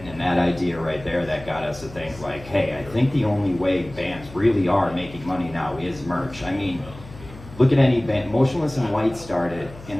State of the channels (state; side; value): noise; left; hum, 17 dB below the sound